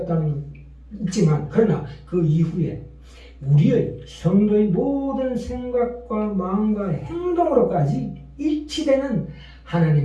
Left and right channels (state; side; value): identical; both; correlation 1.00